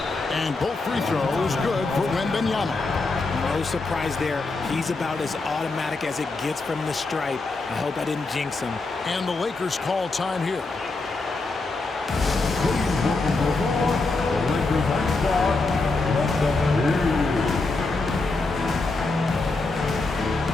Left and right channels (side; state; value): right; quieter; 3.5 dB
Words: And both free throws good for Wembanyama. No surprise there. He's about as automatic as it gets from the stripe. I hope I didn't jinx him. And the Lakers call time here.